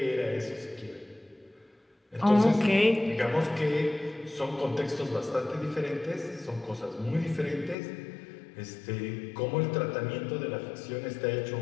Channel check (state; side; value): drops out; right; at 7.8 s